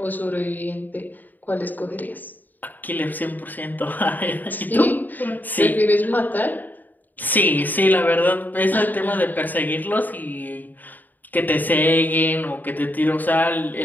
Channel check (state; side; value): late; right; 0.086 ms